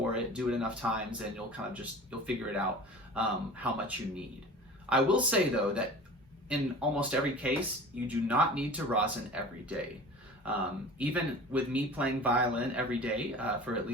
it, do it enough times, and you'll figure it out how much you need. I will say though that in almost every case, you do not need to rosin every day. Even with me playing violin every day for at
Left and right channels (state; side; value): normal; both; correlation 0.39